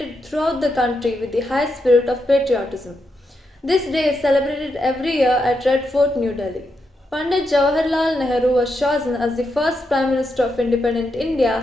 throughout the country with the high spirit of patriotism. This day is celebrated every year at Red Fort, New Delhi. Pandit Jawaharlal Nehru was chosen as the first Prime Minister of independent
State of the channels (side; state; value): both; normal; correlation 0.83